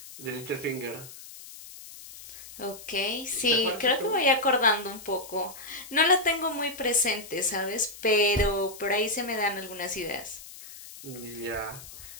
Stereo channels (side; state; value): left; noise; hiss, 16 dB below the sound